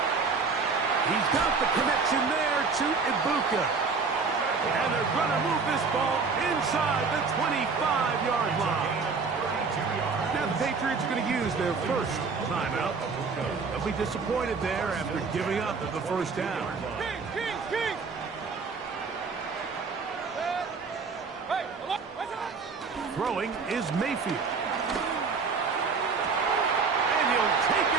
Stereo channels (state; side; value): quieter; left; 4.8 dB